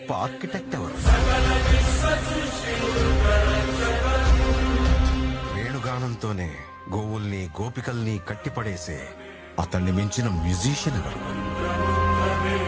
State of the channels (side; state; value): both; identical; correlation 1.00